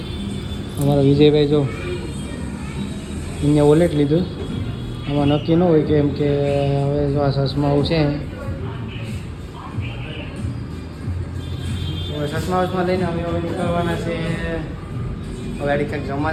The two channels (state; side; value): identical; both; correlation 1.00